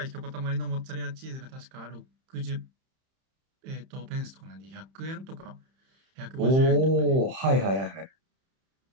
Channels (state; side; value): late; left; 31 ms